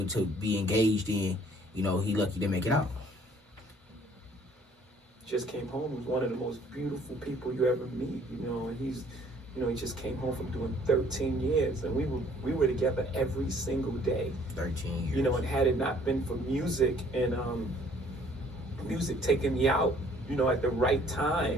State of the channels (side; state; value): both; normal; correlation 0.58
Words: to be engaged in, you know, he lucky to make it out. Just came home. He was one of the most beautiful people you ever meet, you know, and he's, you know, he just came home from doing 13 years, and we were together every single day. 13 years. You know, and had it not been for music and music taking me out, you know, at the right